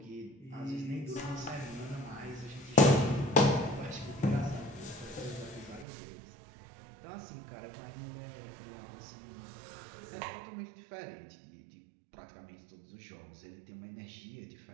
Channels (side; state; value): left; drops out; at 5.9 s